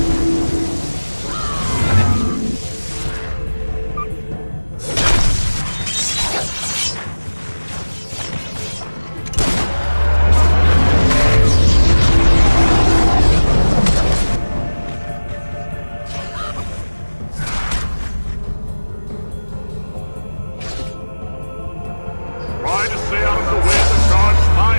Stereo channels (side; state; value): both; inverted; correlation -1.00